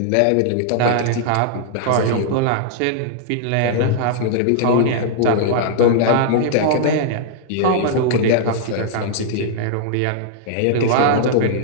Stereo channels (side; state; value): both; different; correlation -0.01